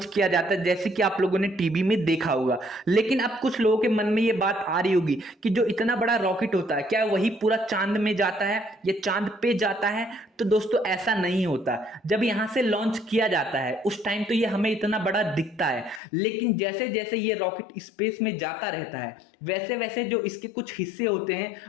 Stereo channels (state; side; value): drops out; right; at 16.0 s